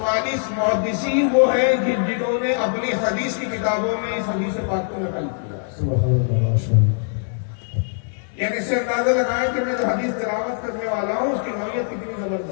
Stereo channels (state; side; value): silent; right; digital silence